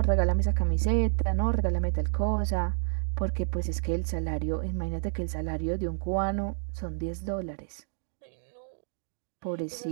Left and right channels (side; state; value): left; silent; digital silence